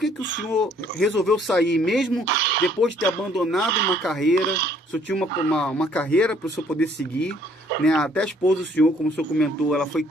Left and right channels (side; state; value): both; normal; correlation 0.62